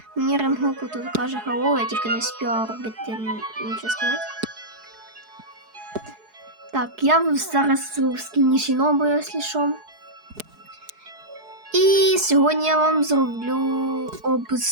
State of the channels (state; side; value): late; left; 4.7 ms